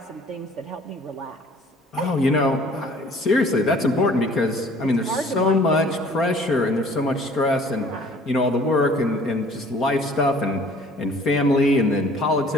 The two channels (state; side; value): normal; both; correlation 0.53